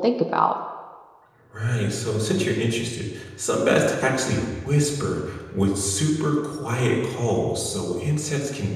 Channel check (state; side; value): identical; both; correlation 1.00